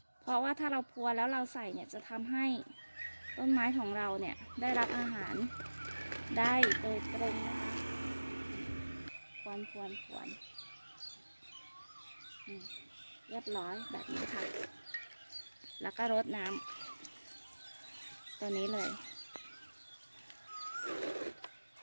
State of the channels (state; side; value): inverted; both; correlation -1.00